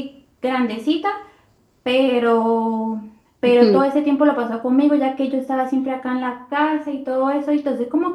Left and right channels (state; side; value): identical; both; correlation 1.00